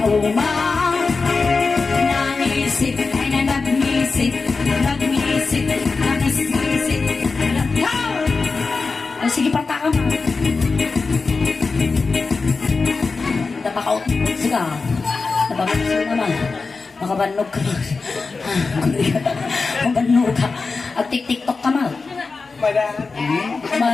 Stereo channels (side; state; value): right; quieter; 4.2 dB